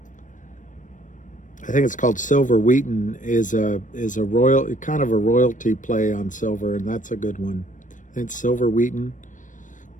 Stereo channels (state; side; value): late; right; 0.37 ms